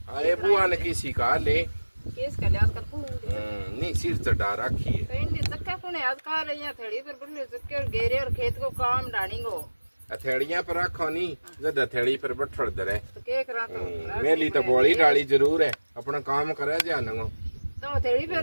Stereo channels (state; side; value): inverted; both; correlation -1.00